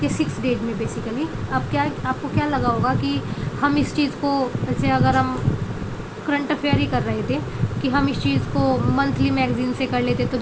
के 6 डेज में बेसिकली। अब क्या आपको क्या लगा होगा कि हम इस चीज़ को, जैसे अगर हम करंट अफेयर ही कर रहे थे कि हम इस चीज़ को मंथली मैगज़ीन से कर लेते तो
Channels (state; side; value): identical; both; correlation 1.00